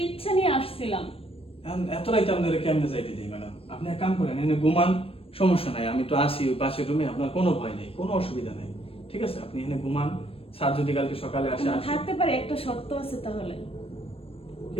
ইচ্ছা নিয়ে আসছিলাম। এখন এত রাইতে আপনারা কেমনে যাইতে দিই ম্যাডাম? আপনি এক কাম করেন, এনে ঘুমান, সমস্যা নাই, আমি তো আসি ওই পাশের রুমে, আপনার কোনো ভয় নেই, কোনো অসুবিধা নেই, ঠিক আছে? আপনি এনে ঘুমান, স্যার যদি কালকে সকালে আসে আমি আসে। থাকতে পারি, একটা শর্ত আছে। তাহলে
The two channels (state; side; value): late; right; 0.28 ms